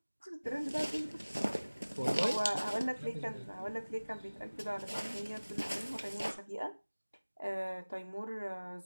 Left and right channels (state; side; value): inverted; both; correlation -1.00